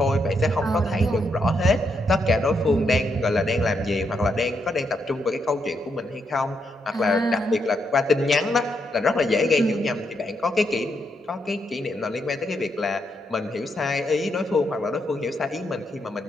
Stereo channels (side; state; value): both; normal; correlation 0.79